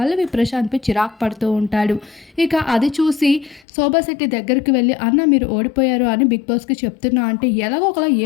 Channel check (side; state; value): right; drops out; at 3.6 s